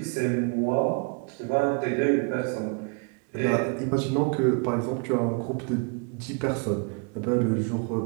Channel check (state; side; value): quieter; left; 36.0 dB